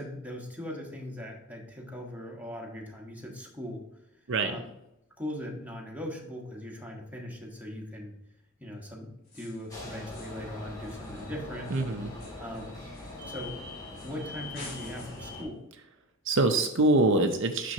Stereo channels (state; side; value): normal; both; correlation 0.25